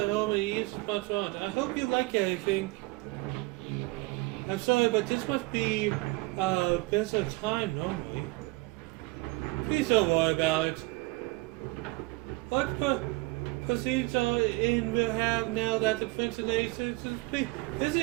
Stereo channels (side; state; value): left; quieter; 23.7 dB